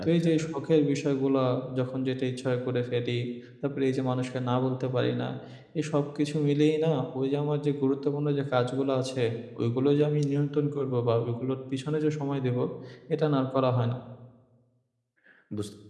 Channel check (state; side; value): identical; both; correlation 1.00